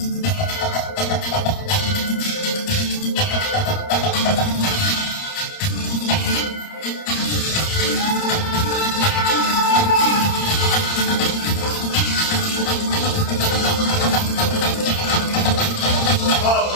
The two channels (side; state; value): right; late; 29 ms